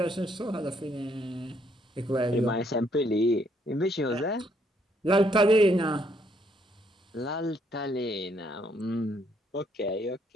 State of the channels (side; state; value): both; normal; correlation 0.70